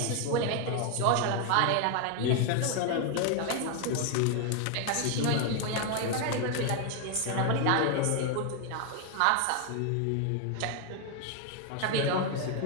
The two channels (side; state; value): both; different; correlation 0.01